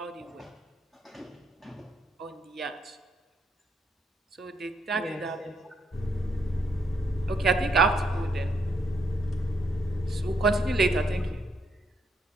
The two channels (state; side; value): normal; both; correlation 0.75